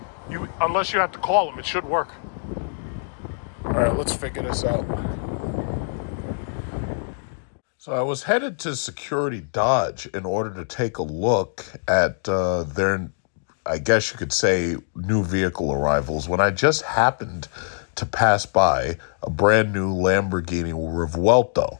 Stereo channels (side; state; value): right; silent; digital silence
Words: Unless you have to call them, it should work. All right, let's figure this out. So I was headed to Security Dodge in order to take a look at their, I guess you could say, new vehicle arrivals, when I just happened to pass by a brand new Lamborghini Revuelto.